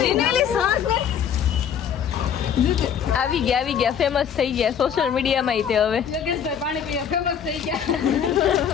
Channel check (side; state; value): right; quieter; 8.2 dB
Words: આવી ગયા ફેમસ થઈ ગયા સોશિયલ મીડિયામાં તે હવે યોગેશભાઈ પાણી પીવા ફેમસ થઈ ગયા